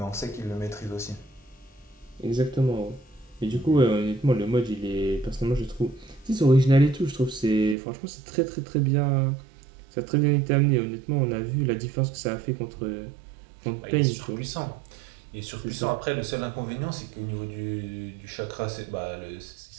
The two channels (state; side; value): drops out; left; at 7.8 s